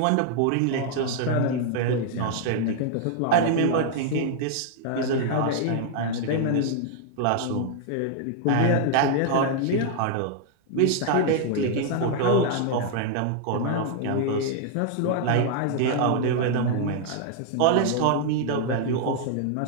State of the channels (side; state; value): both; different; correlation 0.00